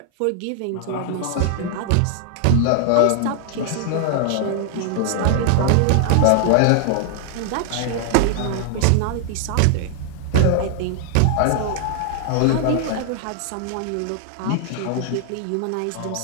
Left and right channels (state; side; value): different; both; correlation 0.00